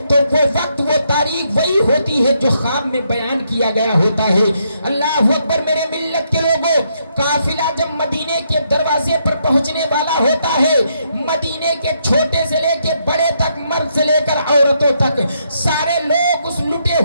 تو وہ وقت وہ تاریخ وہی ہوتی ہے جو خواب میں بیان کیا گیا ہوتا ہے۔ اللہ اکبر، میرے ملت کے لوگوں، قافلہ جب مدینے کے دروازے پر پہنچنے والا ہوتا ہے، مدینے کے چھوٹے سے لے کے بڑے تک، مرد سے لے کر عورتوں تک، سارے لوگ اس لٹے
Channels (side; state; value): both; inverted; correlation -0.76